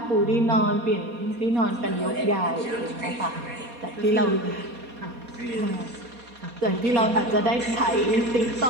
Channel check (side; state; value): left; late; 4.2 ms